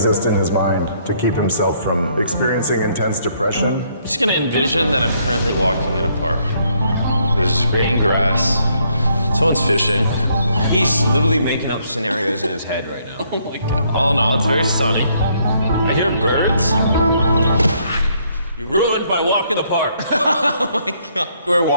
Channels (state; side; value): inverted; both; correlation -0.70